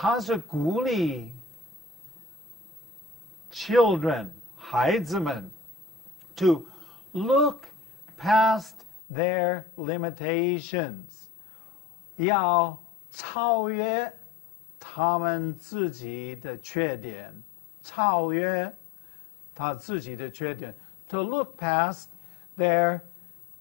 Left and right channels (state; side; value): drops out; right; at 9.0 s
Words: 是鼓励 children, 孩子们 to look past their limitations, 要超越他们自己的缺点, 超越他自己的缺点, to look past their